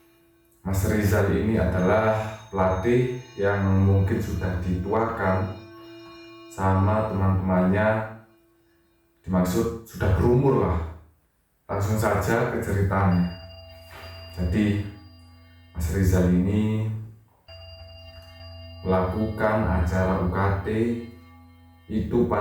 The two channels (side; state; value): both; identical; correlation 1.00